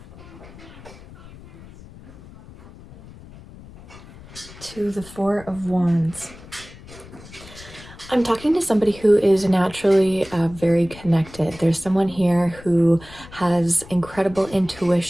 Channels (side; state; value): left; noise; rumble, 19 dB below the sound